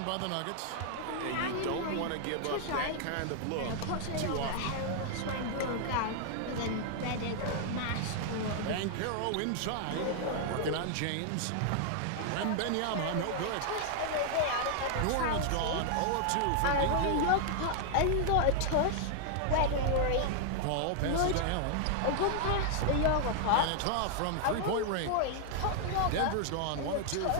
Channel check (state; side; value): different; both; correlation 0.00